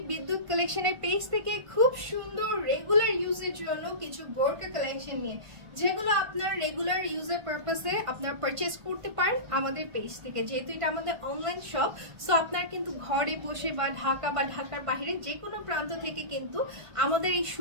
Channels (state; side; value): late; left; 1.5 ms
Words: বিদ্যুৎ কালেকশনের পেজ থেকে খুব সুন্দর রেগুলার ইউজের জন্য কিছু বোরকা কালেকশন নিয়ে, যেগুলো আপনার রেগুলার ইউজের পারপাসে আপনার পারচেজ করতে পারেন আমাদের পেজ থেকে। যেহেতু এটা আমাদের অনলাইন শপ, সো আপনার কিন্তু ঘরে বসে বা ঢাকা বা ঢাকার বাইরে যে কোনো প্রান্ত থেকে কিন্তু আমাদের এই